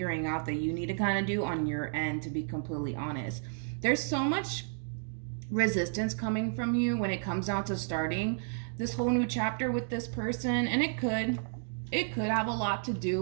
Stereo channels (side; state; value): left; silent; digital silence